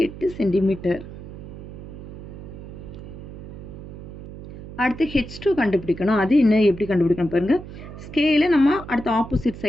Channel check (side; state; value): right; noise; hum, 13 dB below the sound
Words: சென்டிமீட்டர். அடுத்து H2 கண்டுபிடிக்கணும். அது என்ன எப்படி கண்டுபிடிக்கணும் பாருங்கள். ஸ்கேலை நம்ம அடுத்த ஆப்போசிட்